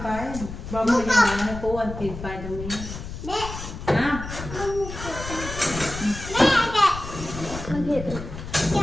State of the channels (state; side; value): noise; left; rumble, 9 dB below the sound